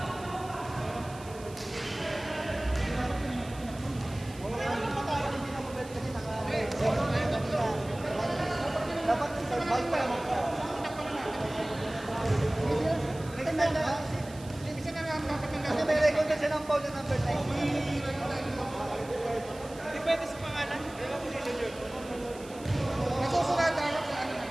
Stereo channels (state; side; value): noise; right; hiss, 20 dB below the sound